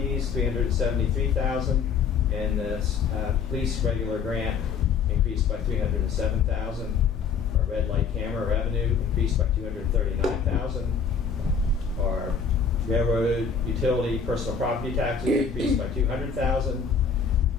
$373,000. And the police regular grant increased by $307,000. Our red light camera revenue increased by $239,000. Our railroad utility personal property taxes increased by $200,000.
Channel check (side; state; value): right; quieter; 6.0 dB